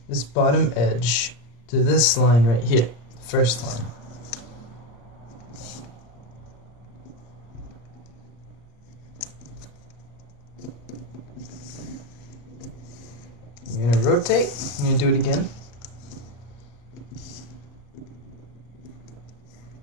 this bottom edge to this line right here, first line. You're going to rotate, you're going to do it again.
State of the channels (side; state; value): right; late; 34 ms